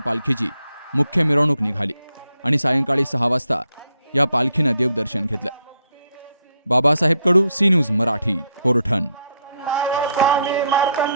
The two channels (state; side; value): inverted; both; correlation -0.74